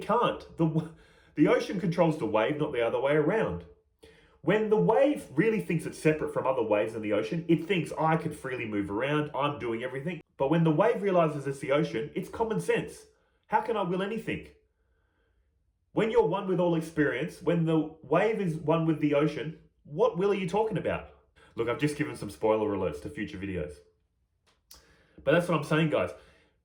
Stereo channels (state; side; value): identical; both; correlation 1.00